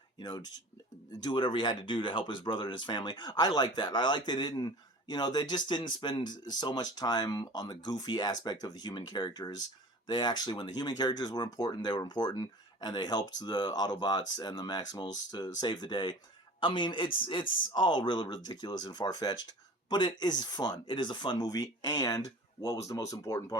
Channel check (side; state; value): both; normal; correlation 0.41